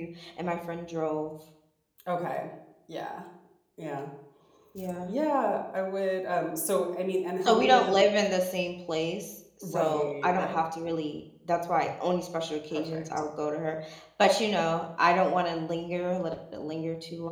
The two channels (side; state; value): both; identical; correlation 1.00